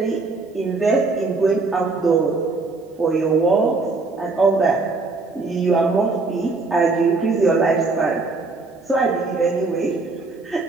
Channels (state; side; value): quieter; left; 3.7 dB